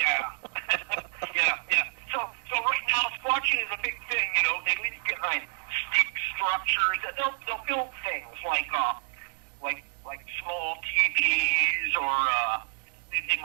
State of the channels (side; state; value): left; silent; digital silence